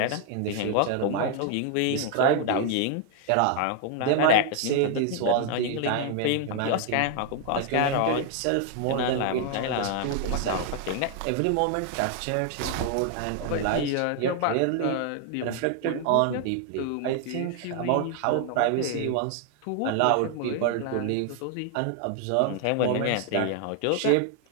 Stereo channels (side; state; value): both; different; correlation 0.00